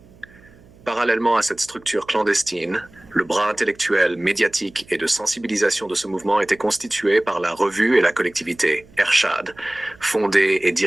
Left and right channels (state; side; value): noise; right; hum, 26 dB below the sound